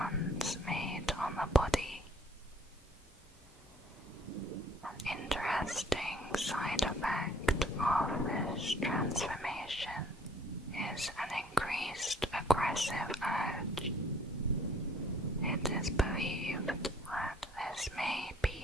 made on the body. An interesting side effect of this transformation is an increased aggressive urge. It is believed that this may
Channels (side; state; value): both; normal; correlation 0.59